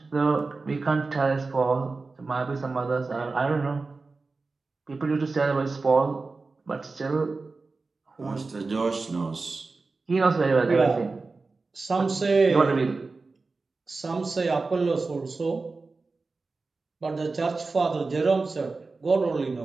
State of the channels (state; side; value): quieter; left; 3.9 dB